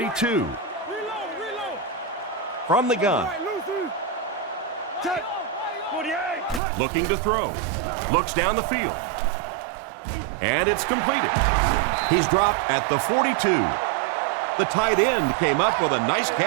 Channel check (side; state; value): left; drops out; at 6.6 s